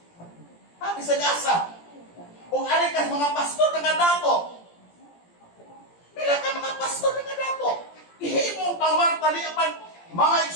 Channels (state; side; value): late; right; 17 ms